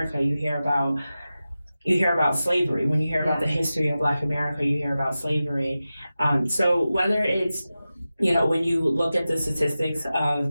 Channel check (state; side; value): inverted; both; correlation -0.94